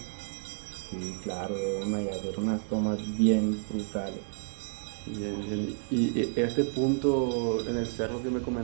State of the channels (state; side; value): silent; left; digital silence